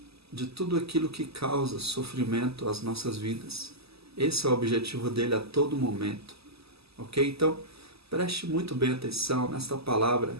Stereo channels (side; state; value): left; late; 0.78 ms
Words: de tudo aquilo que causa sofrimento às nossas vidas. Esse é o objetivo dele a todo momento. Ok? Então, preste muito bem atenção nesta palavra